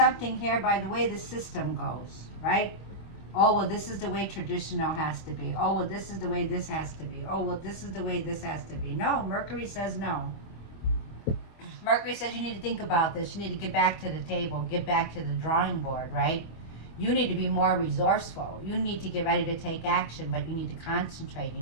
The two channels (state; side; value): late; right; 25 ms